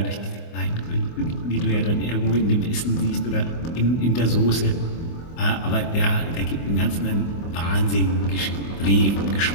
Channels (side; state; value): right; late; 24 ms